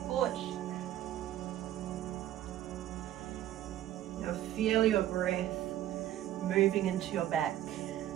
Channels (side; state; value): left; quieter; 12.7 dB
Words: Now feel your breath moving into your back.